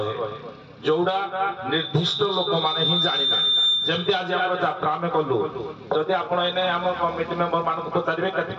जोड़ा निर्दिष्ट लोक माने ही जानि ना जेमति आज हमर यात्रा में कलु जदि आपण एने हमर कमिटी मेंबर मान को पचारिबे केते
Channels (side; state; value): both; identical; correlation 1.00